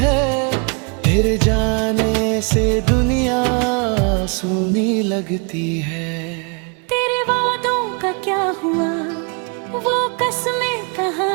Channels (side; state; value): left; quieter; 35.4 dB